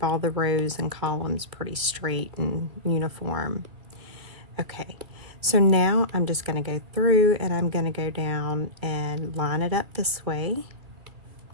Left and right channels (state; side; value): late; left; 2.4 ms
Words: all the rows and columns pretty straight and uniform. Okay, so now I'm just going to go through and I'm going to go down and line it up this way.